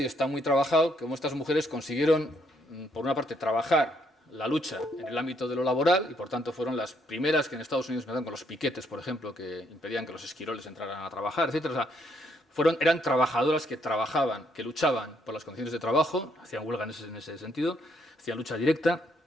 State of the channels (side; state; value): both; normal; correlation 0.72